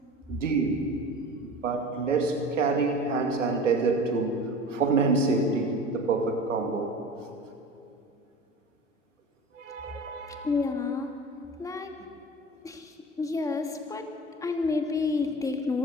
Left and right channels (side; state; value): both; normal; correlation 0.36